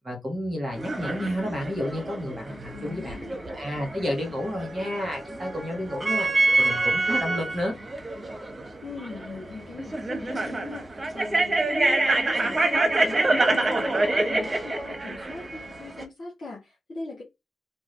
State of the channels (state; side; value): normal; both; correlation 0.93